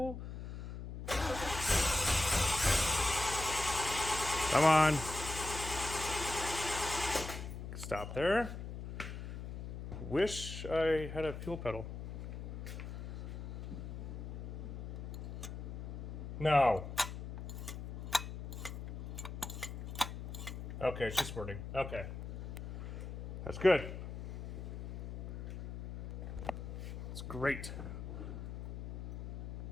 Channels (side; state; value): left; noise; hum, 7 dB below the sound